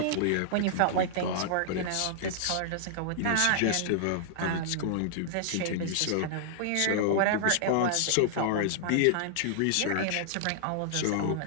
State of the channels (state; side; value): different; both; correlation -0.01